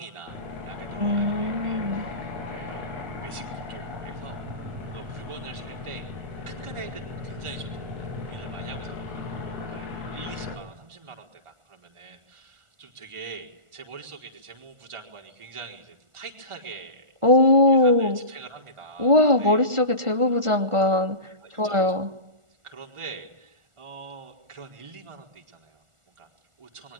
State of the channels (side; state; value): left; late; 1.4 ms